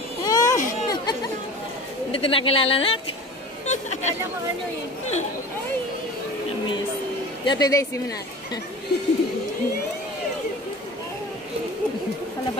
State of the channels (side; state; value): both; normal; correlation 0.38